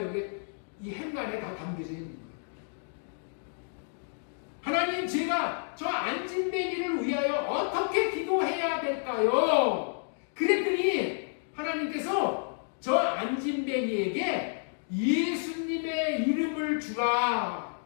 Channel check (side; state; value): right; silent; digital silence